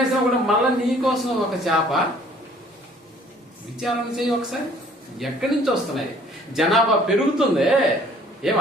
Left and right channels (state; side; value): normal; both; correlation 0.56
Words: కూడా మళ్ళా నీకోసం ఒక చేప. విచారణ చేయి ఒకసారి, ఎక్కడి నుంచి వస్తున్నాయి? జనాభా పెరుగుతుందే. ఏం